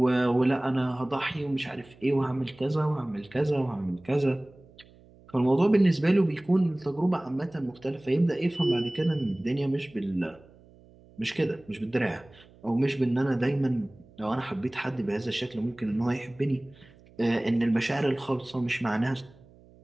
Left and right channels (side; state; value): right; noise; hum, 26 dB below the sound